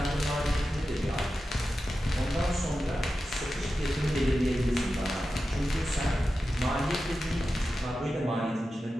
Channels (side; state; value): both; normal; correlation 0.92